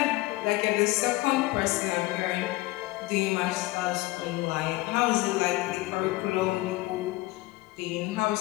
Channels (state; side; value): quieter; right; 19.8 dB